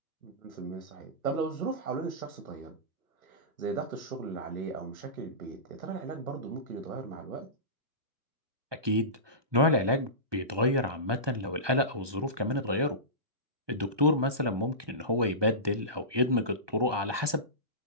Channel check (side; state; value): left; late; 1.2 ms